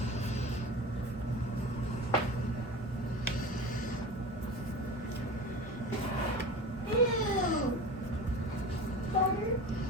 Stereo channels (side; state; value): both; normal; correlation 0.31